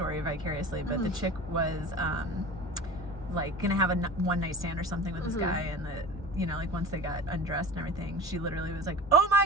vicariously, but the chick was like gonna have a one night stand or something with this guy, and you know, like once they got undressed and everything, she literally was like, oh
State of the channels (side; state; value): both; normal; correlation 0.35